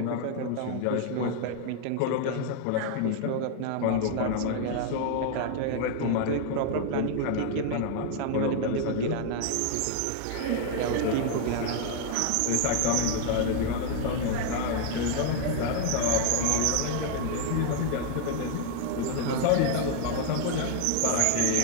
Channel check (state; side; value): different; both; correlation 0.00